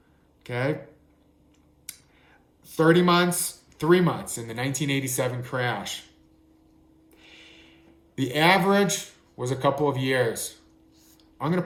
Okay? 30 months, 3 months in the 1987 crash. The average was a couple of years. I'm going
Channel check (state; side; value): identical; both; correlation 1.00